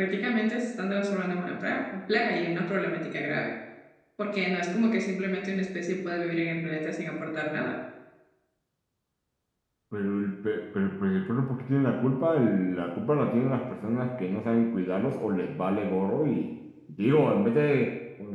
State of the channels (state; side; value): identical; both; correlation 1.00